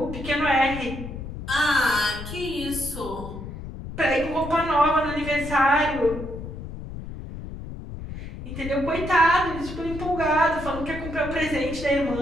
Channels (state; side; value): noise; left; rumble, 10 dB below the sound